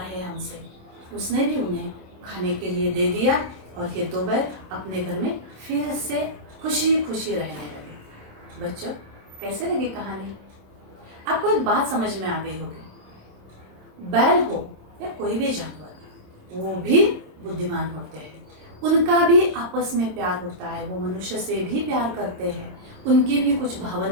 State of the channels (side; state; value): left; late; 27 ms